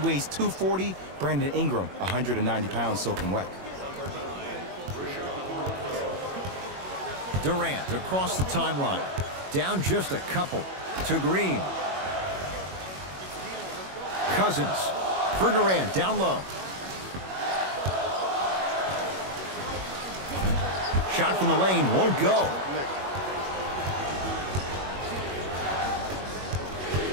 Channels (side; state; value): left; late; 21 ms